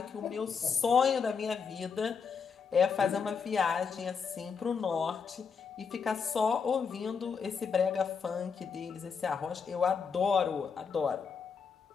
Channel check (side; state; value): right; quieter; 6.0 dB